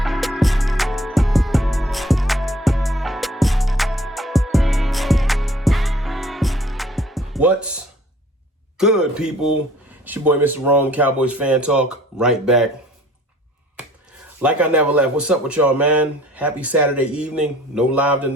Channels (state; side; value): normal; both; correlation 0.55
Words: What's good, people? It's your boy, Mr. Rome, Cowboys Fan Talk, right back. Like I never left. What's up with y'all, man? Happy Saturday evening. No live